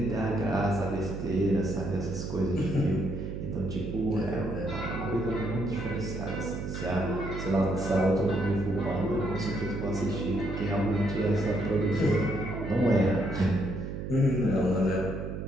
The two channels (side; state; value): right; noise; hum, 5 dB below the sound